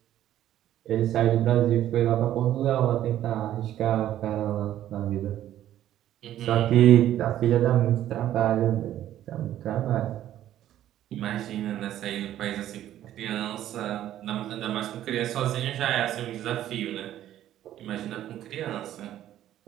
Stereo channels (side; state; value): left; quieter; 12.3 dB